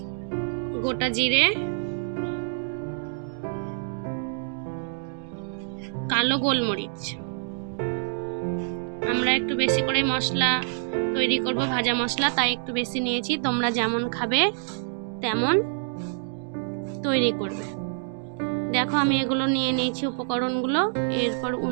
গোটা জিরে, কালো গোলমরিচ। আমরা একটু বেশি করে মশলা তৈরি করব, ভাজা মশলা, তাই একটু বেশি নিয়েছি। তোমরা যেমন খাবে তেমন তৈরি করবে। দেখো, আমি এগুলো নিয়ে নিয়েছি উপকরণগুলো। এরপর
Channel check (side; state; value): left; silent; digital silence